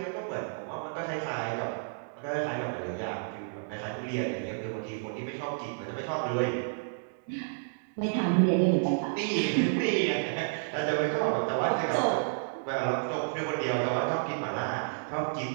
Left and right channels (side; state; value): left; silent; digital silence